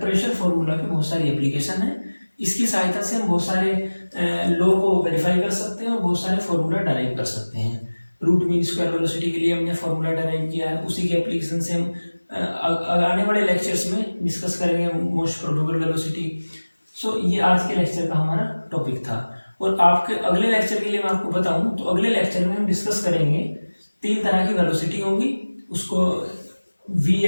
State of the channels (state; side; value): inverted; both; correlation -1.00